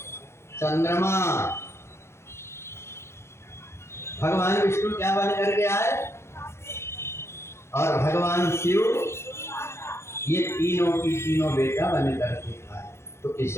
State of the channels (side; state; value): right; late; 0.13 ms